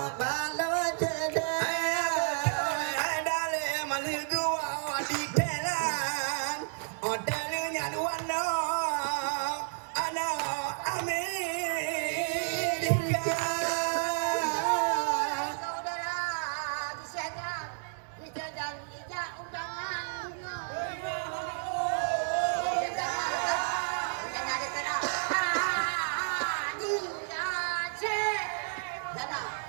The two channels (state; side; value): silent; left; digital silence